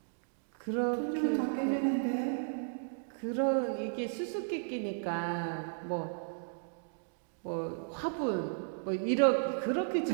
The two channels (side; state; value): left; silent; digital silence